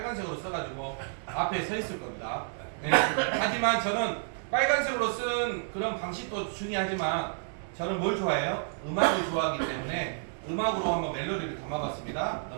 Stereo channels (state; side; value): silent; left; digital silence